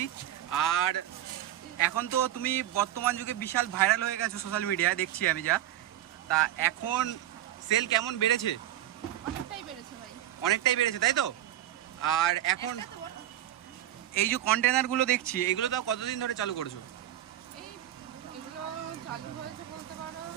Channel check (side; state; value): left; quieter; 12.6 dB